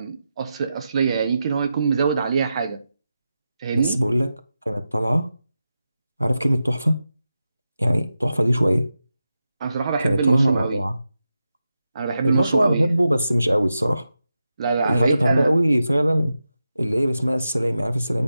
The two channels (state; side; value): inverted; both; correlation -0.90